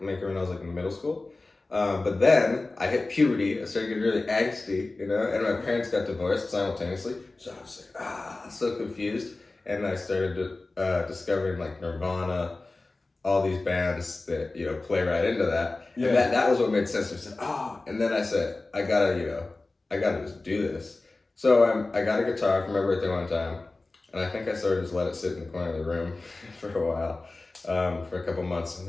when I was like in middle school. But then I hit puberty. I started getting really angsty, and my parents got divorced simultaneously. So I was like, so confused. And I started discovering like Nirvana, all these bands that, play right into that. Yeah. And that was what made sense. I said, and then I said, I gotta just do this. So I got a guitar for my birthday one time, and I think I sort of just let it sit in the corner of the room for a while, for a couple months. And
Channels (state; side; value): quieter; right; 3.2 dB